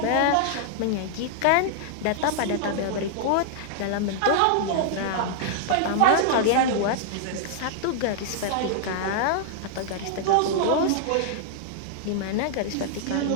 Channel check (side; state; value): both; different; correlation -0.01